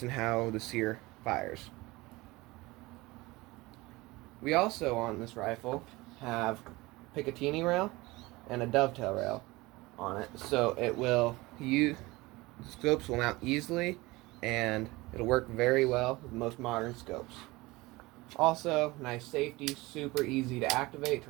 and how the sear fires. We also, on this rifle, have Picatinny rail and a dovetail rail on it, so scopes will mount easily, and it'll work very well with most modern scopes. Also, nice safety, super easy to activate,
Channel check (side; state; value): left; quieter; 21.3 dB